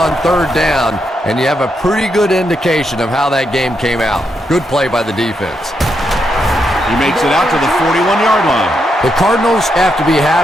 3rd down, and you have a pretty good indication of how that game came out. Good play by the defense. He makes it out to the 41-yard line. The Cardinals have to be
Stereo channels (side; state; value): both; normal; correlation 0.81